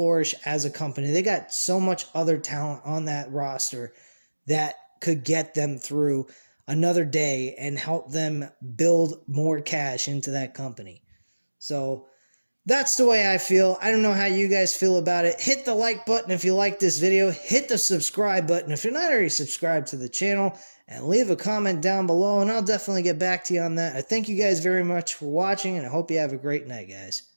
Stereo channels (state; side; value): inverted; both; correlation -1.00